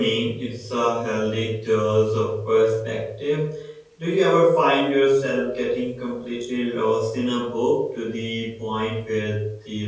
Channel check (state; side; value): identical; both; correlation 1.00